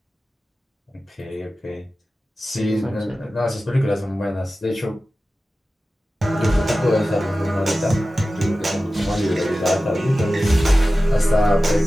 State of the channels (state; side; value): normal; both; correlation 0.95